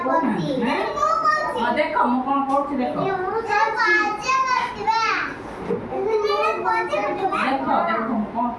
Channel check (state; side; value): identical; both; correlation 1.00